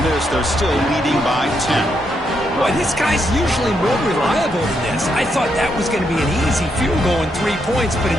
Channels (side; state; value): both; normal; correlation 0.79